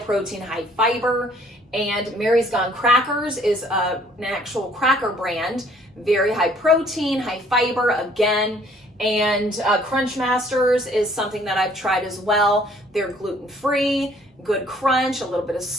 high fiber, And Mary's Gone Crackers is an actual cracker brand, very high protein, high fiber again. And Crunch Masters is something that I've tried as well. They're gluten-free, good crunch, a little bit of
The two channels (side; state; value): both; normal; correlation 0.60